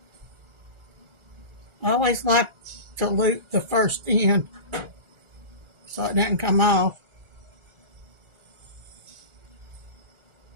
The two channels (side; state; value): left; late; 1.4 ms